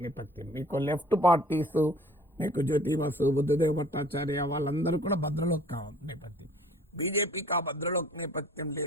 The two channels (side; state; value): both; normal; correlation 0.52